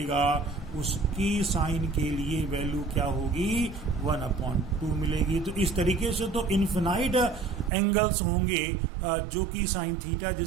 उसकी साइन के लिए वैल्यू क्या होगी, 1/2 मिलेगी। तो इस तरीके से तो इन्फिनाइट एंगल्स होंगे जो कि साइन थीटा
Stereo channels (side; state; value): left; drops out; at 7.7 s